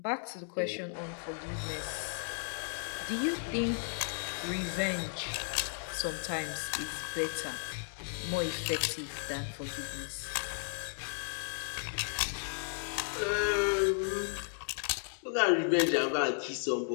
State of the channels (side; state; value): right; silent; digital silence